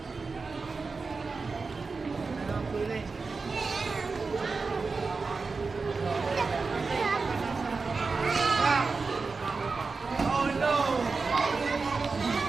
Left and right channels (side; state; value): left; quieter; 4.3 dB